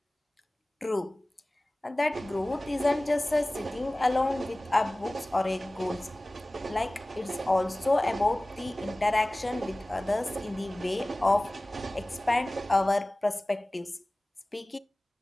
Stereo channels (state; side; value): normal; both; correlation 0.98